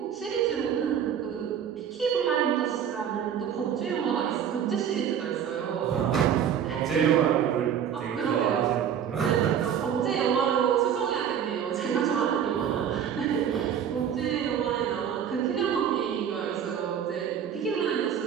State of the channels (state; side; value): quieter; left; 8.7 dB